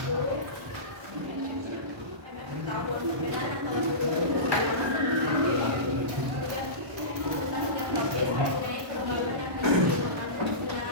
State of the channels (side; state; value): left; late; 1.1 ms